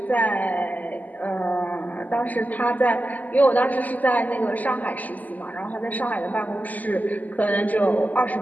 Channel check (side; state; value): right; late; 0.080 ms